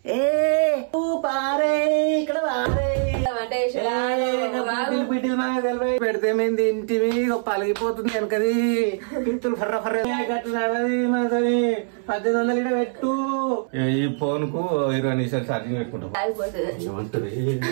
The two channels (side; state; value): left; silent; 63 dB below the other